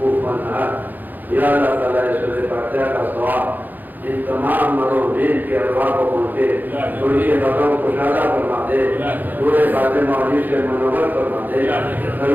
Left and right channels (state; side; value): late; left; 0.085 ms